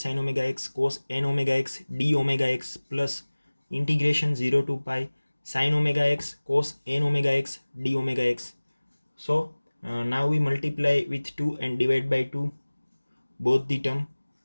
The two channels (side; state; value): both; inverted; correlation -1.00